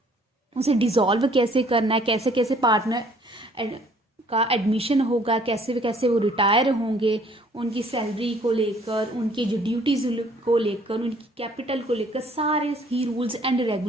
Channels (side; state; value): both; normal; correlation 0.59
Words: उसे डिसॉल्व कैसे करना है, कैसे कैसे पार्टनर का एडमिशन होगा, कैसे कैसे वो रिटायर होंगे, उनकी सैलरी को लेकर, उनकी जो ड्यूटीज को लेकर, उनकी कैपिटल को लेकर, सारे ही रूल्स एंड